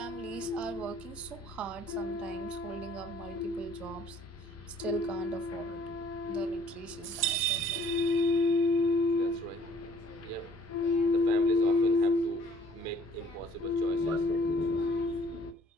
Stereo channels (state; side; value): normal; both; correlation 0.58